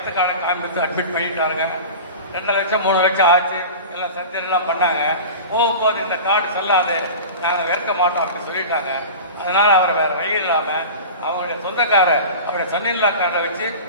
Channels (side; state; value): both; inverted; correlation -0.33